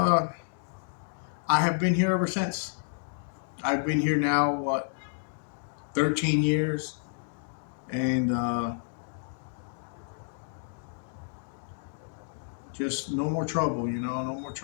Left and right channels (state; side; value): silent; right; digital silence